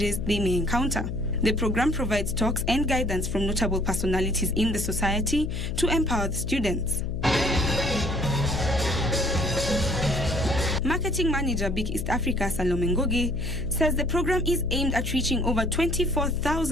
they may encounter. The program provides talks and guidance from notable personalities in the society to empower the students. Marketing Manager Big East Africa Salome Ngoge says the program is aimed at reaching over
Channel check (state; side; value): noise; left; hum, 4 dB below the sound